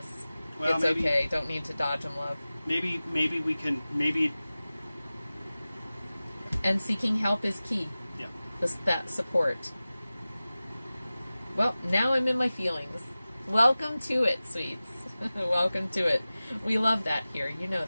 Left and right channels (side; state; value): both; inverted; correlation -0.97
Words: Well, it's maybe, okay. Don't need to dodge them, love. Maybe we can, And seeking help is key. Yeah. That support. Well, now I'm in my feelings. Welcome to it, sweets. Welcome to it. We love that here. You know